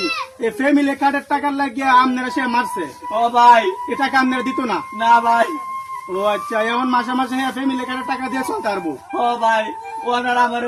এই ফ্যামিলি কার্ডের টাকার লাগিয়ে আপনারা সে মারছে, ও ভাই এ টাকা আপনারা দিত না? না ভাই ও আচ্ছা, এমন মাসে মাসে ফ্যামিলি কার্ডের টাকা দিয়ে চলতে পারবো? ও ভাই ওনার আমারে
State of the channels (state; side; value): identical; both; correlation 1.00